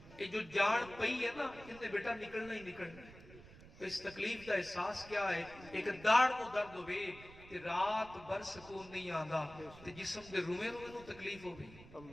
یہ جو جان پئی ہے نا انہیں بیٹا نکلنا ہی نکلنا ہے۔ تو اس تکلیف کا احساس کیا ہے؟ ایک داڑ کو درد ہوئے تے رات بھر سکون نہیں آندا تے جسم دے روئے نو تکلیف ہو گئی۔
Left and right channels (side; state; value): right; noise; rumble, 18 dB below the sound